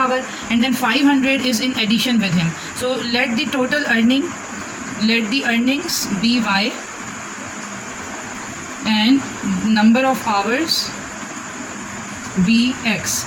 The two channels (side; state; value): both; identical; correlation 1.00